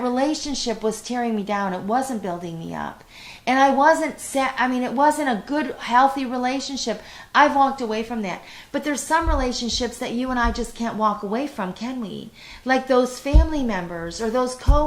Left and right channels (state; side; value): identical; both; correlation 1.00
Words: relationship was tearing me down. It wasn't building me up. And it wasn't a good, healthy relationship. I've walked away from that. But there's some relationships that you and I just can't walk away from, can we? Like those family members or those